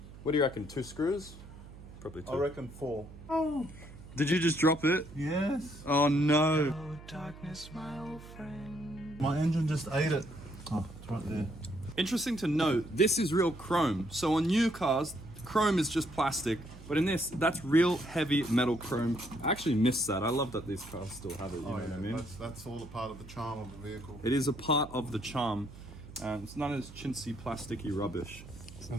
What do you reckon? 2 screws? Probably 2. I reckon 4. Did you just drop it? Yes. Oh no. My engine just ate it. Oh, it's right there. Interesting to note, this is real chrome. So on new cars, chrome is just plastic. But in this, that's real heavy metal chrome. I actually miss that. I love that these cars still have it, you know what I mean? That's all a part of the charm of the vehicle. It is a part of the charm. It's none of this chintzy, plasticky rubbish. So I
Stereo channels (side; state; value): right; noise; hum, 16 dB below the sound